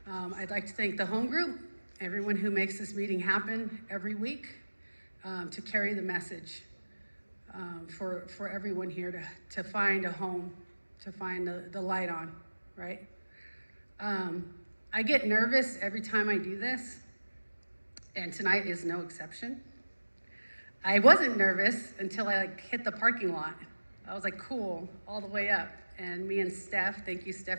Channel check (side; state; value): both; inverted; correlation -1.00